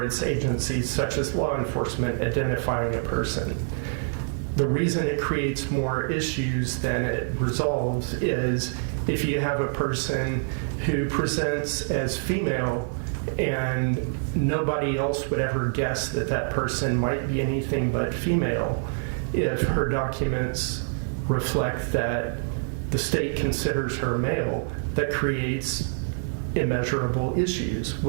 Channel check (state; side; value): silent; left; digital silence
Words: its agencies, such as law enforcement, identifying a person. The reason it creates more issues than it resolves is if you have a person who presents as female and nobody else would ever guess that that person might be anything but female, if her documents reflect that the state considers her male, that creates immeasurable issues